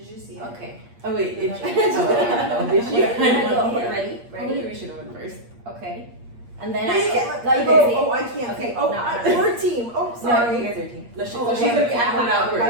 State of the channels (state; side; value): late; left; 8.5 ms